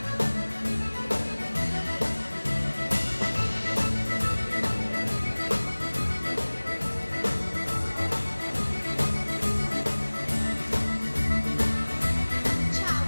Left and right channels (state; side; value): inverted; both; correlation -1.00